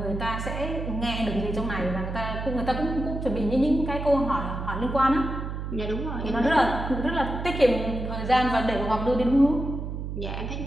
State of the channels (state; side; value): noise; right; hum, 5 dB below the sound